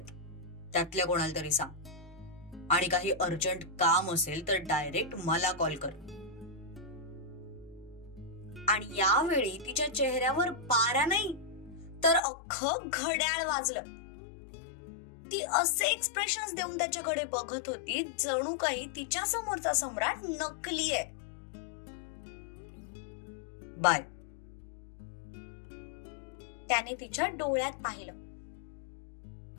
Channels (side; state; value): right; drops out; at 12.2 s